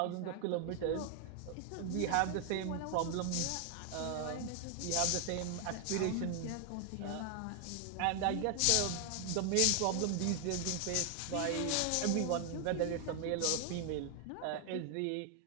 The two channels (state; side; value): different; both; correlation 0.00